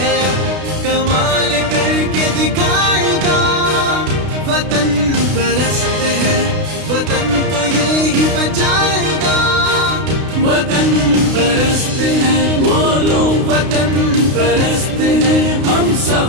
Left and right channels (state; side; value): late; left; 32 ms